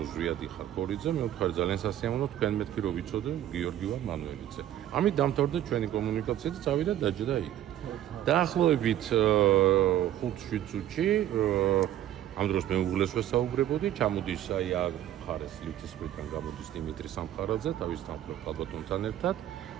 რომ ზვიადი ხარ ქორიძე, მე ვთქვი ძალიან სასიამოვნო, თქვენ მეთქი რომ ვიცოდე, გიორგი ვარ მანუელიძე. ამით დამთავრდა ჩვენი კომუნიკაცია და წავიდა დაჯდა იქ. დაახლოებით 5-7 წუთში ამ დროს მე უღლეს ვესაუბრებოდი, ჩამოდის აი აქ მხარეს ლითისმრიდან გამოდის დიმიტრი სამხარაძე, თავის თანხმობ ალბათონთან ერთად,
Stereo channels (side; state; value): left; quieter; 12.1 dB